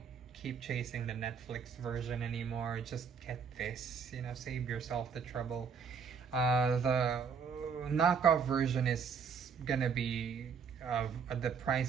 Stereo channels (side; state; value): left; quieter; 6.2 dB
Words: keep chasing the Netflix version anymore. Just get this, save yourself the trouble. The knockoff version is gonna be the